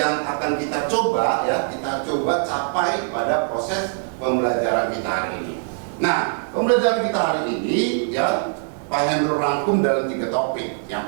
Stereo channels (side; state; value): left; silent; digital silence